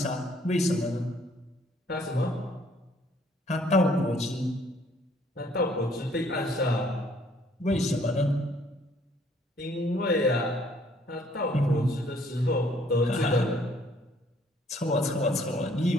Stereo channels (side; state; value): both; normal; correlation 0.62